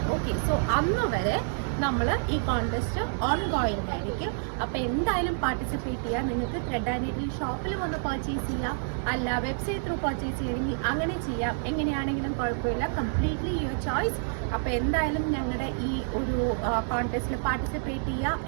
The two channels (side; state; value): left; silent; 59 dB below the other